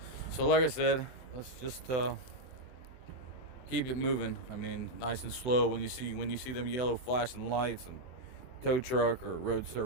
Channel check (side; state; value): right; late; 24 ms